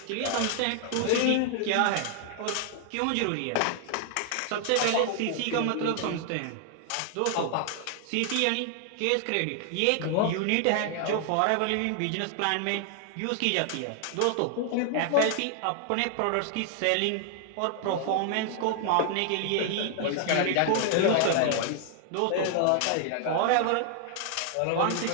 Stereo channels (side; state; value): both; different; correlation 0.00